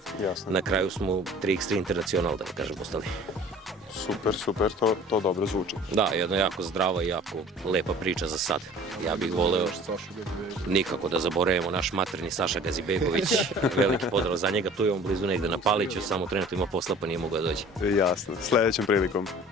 na kraju smo 3x3 Internacional, da kažem, ostali. Super, to dobro zvuči. Da, jedna jako zdrava i jako lepa priča za sad. Ja bih voleo nikako da zaboravimo naš materni Saša Gazibegović, veliki pozdrav za njega, tu je on blizu negde na Paliću, samo trenutno ima posla pa nije mogao da dođe. Jasno, sledećom prilikom.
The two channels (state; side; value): normal; both; correlation 0.47